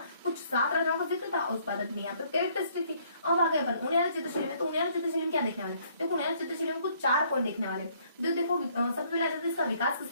कुछ 7 राजाओं का जिक्र था। उस बाद अपनी यहाँ पर कैरेक्टरिस्टिक थी। अब आ गए अपन उनियारा चित्रशैली में। तो उनियारा चित्रशैली में क्या देखने वाले, देखो उनियारा चित्रशैली में कुछ 4 पॉइंट देखने वाले। देखो सबसे पहले आ जाता है इसका विकास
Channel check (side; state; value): both; inverted; correlation -0.64